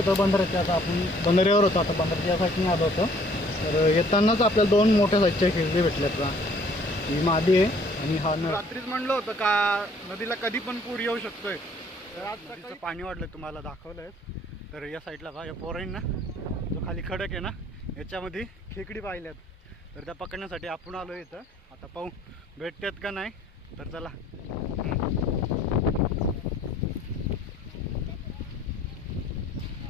बंदराच्या, आता आपण बंदऱ्यावर होतो, आता बंदराच्या साईडने आलो होतो. तर येतानाच आपल्याला दोन मोठ्या साईजच्या खेकडी भेटल्यात बा. ही मादी आहे आणि हा नर. रात्रीच म्हणलं होतं का नदीला कधी पण पूर येऊ शकतोय. तर आज नदीचं पाणी वाढलं, तुम्हाला दाखवलंय. तर या साईडला बा, या पोरांना जो खाली खडक आहे ना, याच्यामध्ये खेकडी पाहिल्यात. तर त्या पकडण्यासाठी आपण आलो इथं. आता पाहू भेटतात का नाही. तर चला.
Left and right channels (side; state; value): both; normal; correlation 0.59